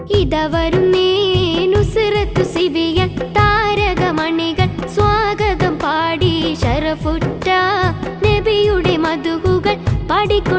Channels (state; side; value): identical; both; correlation 1.00